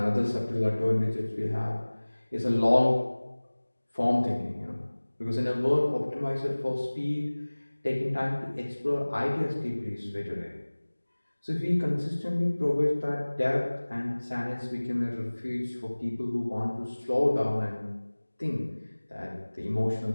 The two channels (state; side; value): inverted; both; correlation -1.00